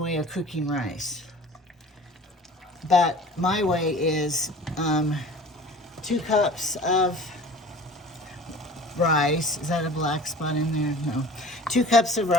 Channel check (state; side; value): normal; both; correlation 0.43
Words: of cooking rice. But my way is 2 cups of rice. Is that a black spot in there? No. 2 cups of